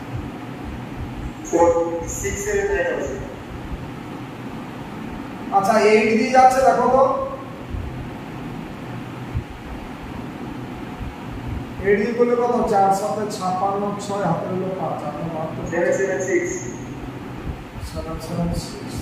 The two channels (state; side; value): identical; both; correlation 1.00